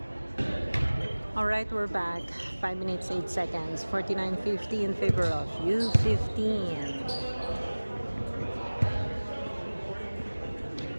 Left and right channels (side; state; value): both; inverted; correlation -1.00